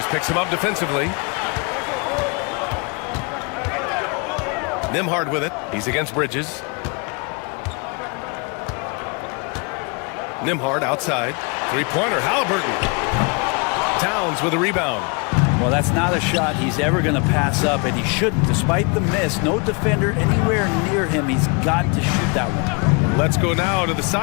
picks him up defensively. Nembhard with it. He's against Bridges. Nembhard outside. Three-pointer, Halliburton. Towns with a rebound. Well, that's not a shot he's ever going to pass up, and he shouldn't. Despite the miss, no defender anywhere near him. He's got to shoot that one. Let's go now to the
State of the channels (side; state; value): right; quieter; 32.2 dB